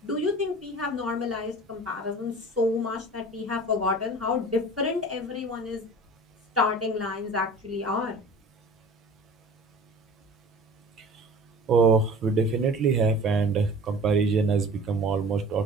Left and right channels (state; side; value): normal; both; correlation 0.41